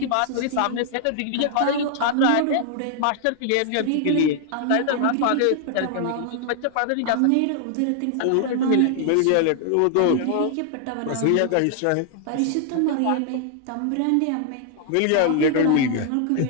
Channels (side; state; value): both; different; correlation 0.00